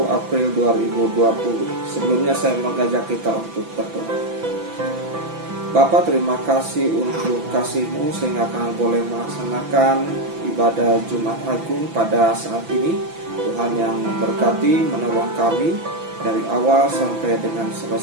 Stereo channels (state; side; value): late; left; 6.0 ms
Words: April 2020. Sebelumnya saya mengajak kita untuk berdoa. Bapa, terima kasih untuk kasih-Mu sehingga kami boleh melaksanakan ibadah Jumat Agung pada saat ini. Tuhan yang memberkati, menolong kami dari awal sampai dengan